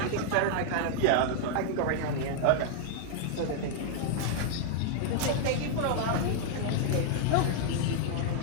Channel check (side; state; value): both; different; correlation 0.00